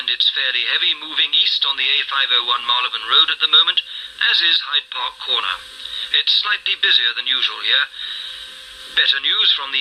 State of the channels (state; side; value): identical; both; correlation 1.00